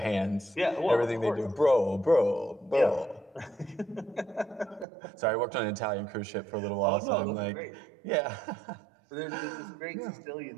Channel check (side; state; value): left; drops out; at 4.9 s